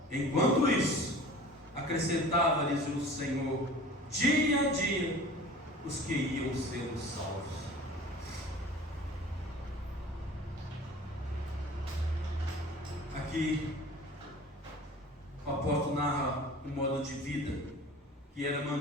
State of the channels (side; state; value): both; normal; correlation 0.42